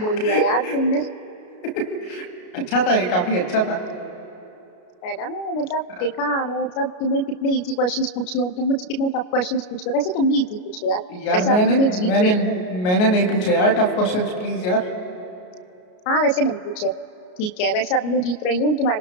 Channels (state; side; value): late; right; 33 ms